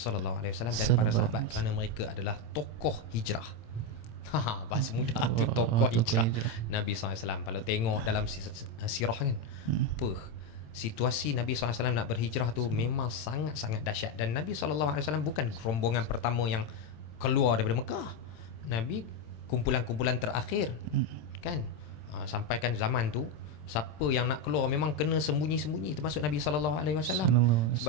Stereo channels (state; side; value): late; right; 27 ms